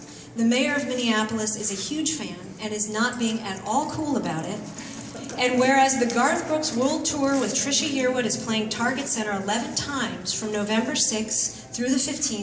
the mayor of Minneapolis is a huge fan and is not being at all cool about it. And whereas the Garth Brooks World Tour with Trisha Yearwood is playing Target Center 11 times from November 6th through the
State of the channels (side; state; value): both; identical; correlation 1.00